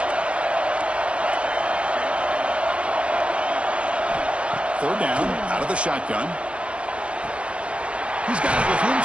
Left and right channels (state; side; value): late; left; 0.060 ms